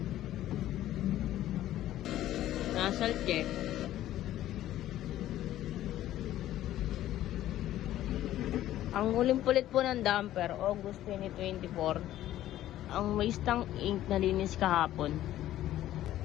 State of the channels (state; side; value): quieter; right; 13.4 dB